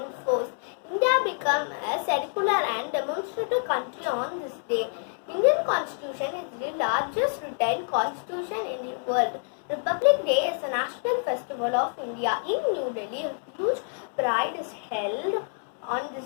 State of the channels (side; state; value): right; silent; 60 dB below the other